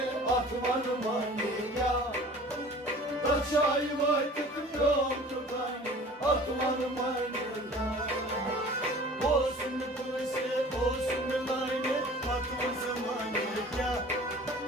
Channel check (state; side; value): normal; both; correlation 0.45